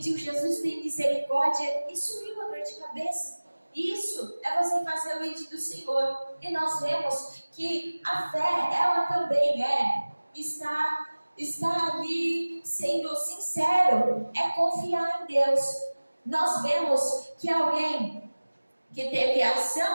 Jesus tem misericórdia, e sumiu a dor de cabeça. Isso é você fazer o ide do Senhor. E nós vemos que a fé, ela também está ali sendo sincero, é confiar em Deus. Nós vemos que alguém que teve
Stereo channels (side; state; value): both; inverted; correlation -1.00